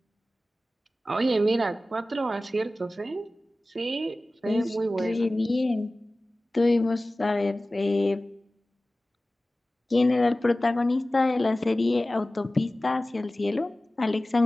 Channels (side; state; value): both; normal; correlation 0.97